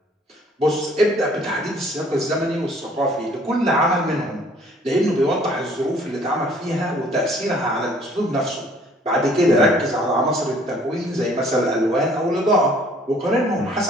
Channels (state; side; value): normal; both; correlation 0.57